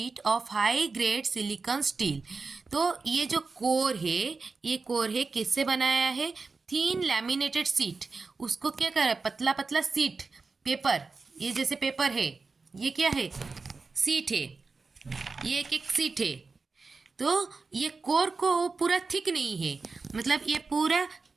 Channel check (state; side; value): quieter; left; 4.3 dB